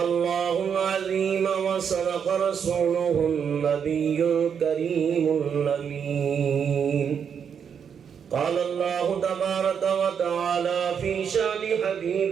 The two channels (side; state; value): left; quieter; 7.4 dB